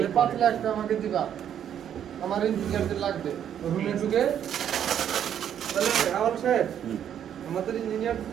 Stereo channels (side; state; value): left; quieter; 9.5 dB